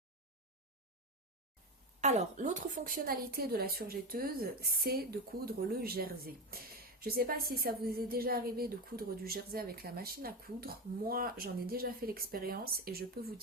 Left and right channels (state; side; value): normal; both; correlation 0.17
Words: Alors, l'autre fonctionnalité de la surjetteuse, c'est de coudre le jersey. Je ne sais pas si ça vous est déjà arrivé de coudre du jersey avec la machine à coudre. Moi, j'en ai déjà fait l'expérience et je peux vous